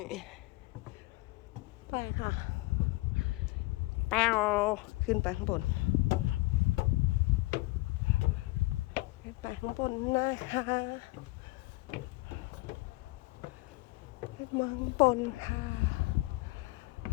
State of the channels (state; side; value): quieter; right; 21.9 dB